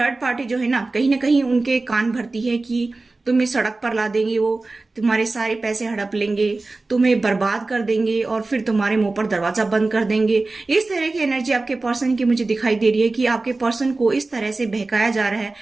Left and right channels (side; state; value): left; quieter; 3.4 dB